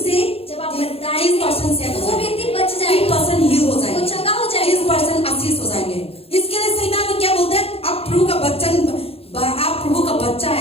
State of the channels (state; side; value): late; right; 0.28 ms